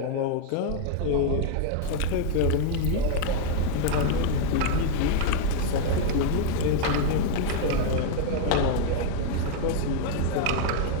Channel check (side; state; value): both; different; correlation 0.00